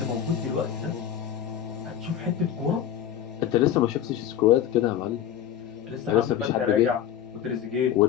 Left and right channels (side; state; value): right; quieter; 10.0 dB